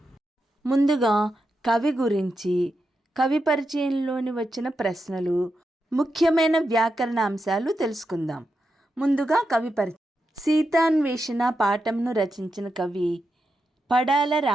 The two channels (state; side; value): normal; both; correlation 0.87